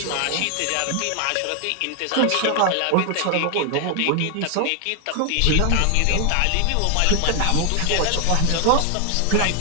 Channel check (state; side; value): different; both; correlation 0.00